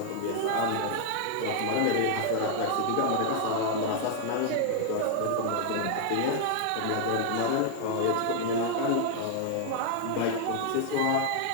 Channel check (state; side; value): different; both; correlation 0.00